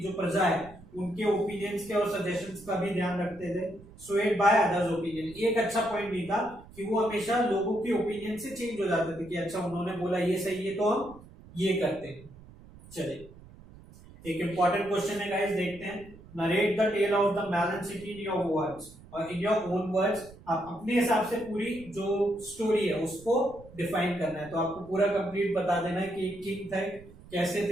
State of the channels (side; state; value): right; noise; rumble, 20 dB below the sound